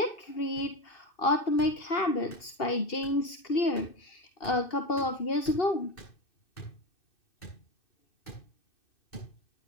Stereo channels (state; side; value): late; right; 2.6 ms